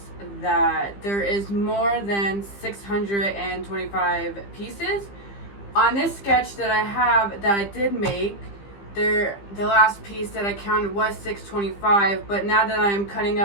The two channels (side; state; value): right; late; 15 ms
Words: that there is more than 625 pieces. On this sketch that I have that I did make, the last piece that I counted was 625, but now that I'm cutting